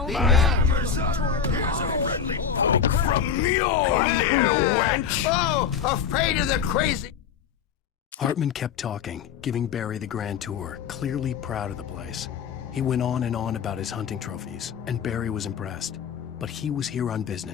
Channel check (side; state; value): right; quieter; 7.2 dB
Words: The hammer's up. Here's a friendly poke from Mjolnir, wench. Oh, afraid of the crazy. Hartman kept talking, giving Barry the grand tour, clearly proud of the place. He went on and on about his hunting trophies, and Barry was impressed. But he was here on